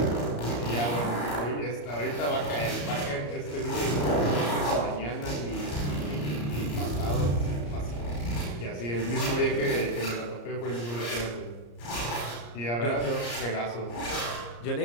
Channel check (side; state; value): right; late; 34 ms